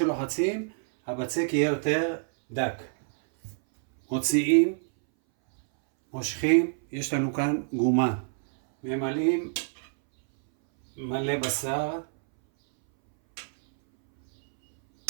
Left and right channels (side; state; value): left; silent; 60 dB below the other